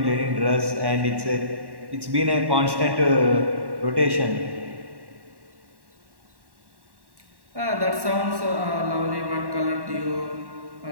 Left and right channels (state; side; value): late; left; 1.1 ms